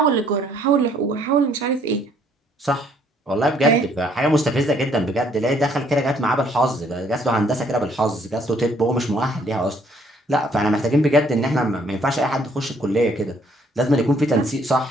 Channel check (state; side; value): normal; both; correlation 0.64